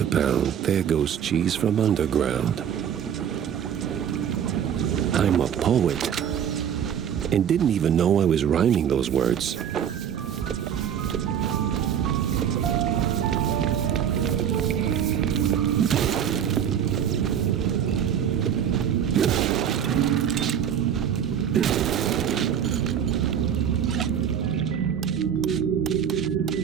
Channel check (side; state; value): left; quieter; 8.9 dB